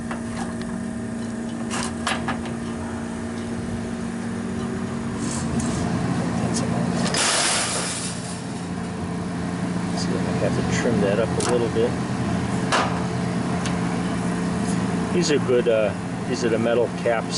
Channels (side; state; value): both; identical; correlation 1.00